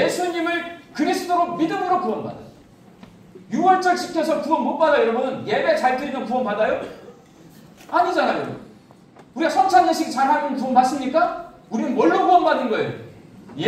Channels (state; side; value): identical; both; correlation 1.00